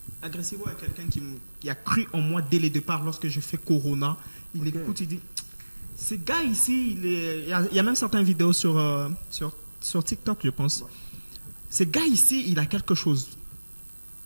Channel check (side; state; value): both; inverted; correlation -1.00